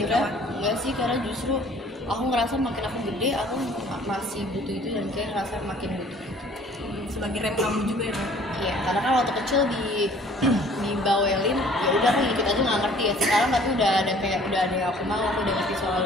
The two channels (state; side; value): normal; both; correlation 0.53